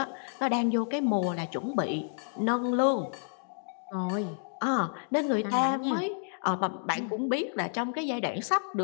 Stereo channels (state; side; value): silent; right; digital silence